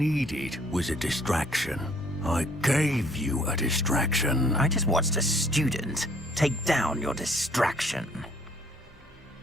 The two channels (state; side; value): normal; both; correlation 0.61